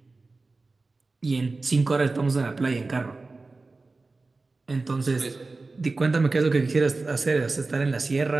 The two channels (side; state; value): left; quieter; 3.6 dB